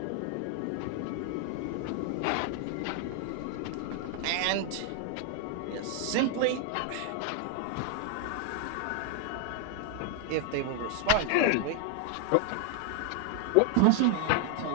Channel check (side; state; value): both; different; correlation 0.00